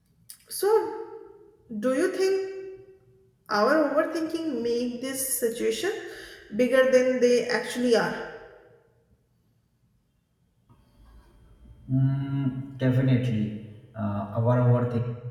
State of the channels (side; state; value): both; identical; correlation 1.00